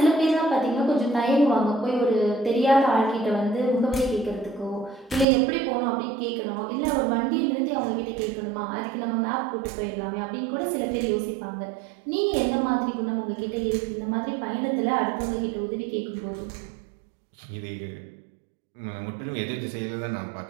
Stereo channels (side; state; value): left; drops out; at 5.2 s